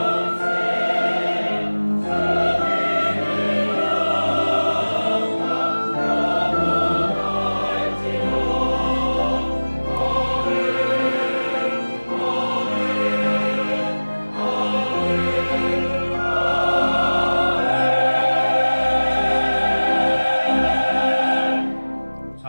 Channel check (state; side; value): inverted; both; correlation -1.00